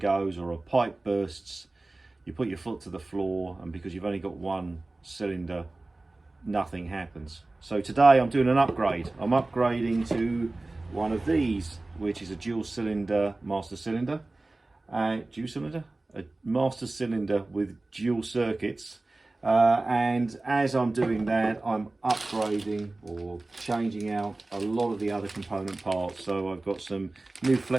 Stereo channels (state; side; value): quieter; left; 3.0 dB